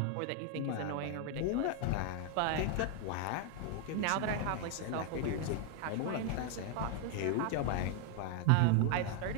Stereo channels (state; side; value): different; both; correlation 0.01